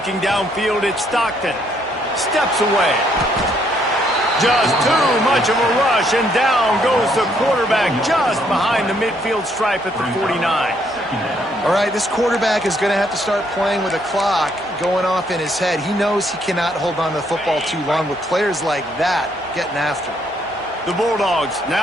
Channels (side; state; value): both; normal; correlation 0.70